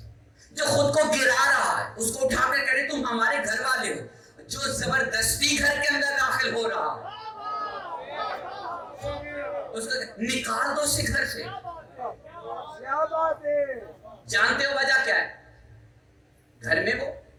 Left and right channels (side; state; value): both; identical; correlation 1.00